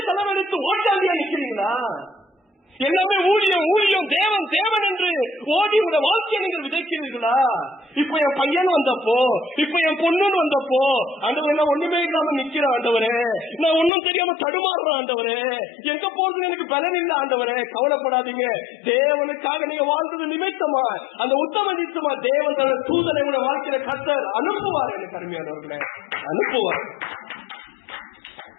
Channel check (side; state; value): right; drops out; at 13.9 s